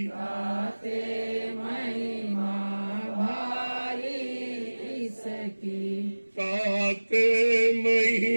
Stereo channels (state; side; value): inverted; both; correlation -1.00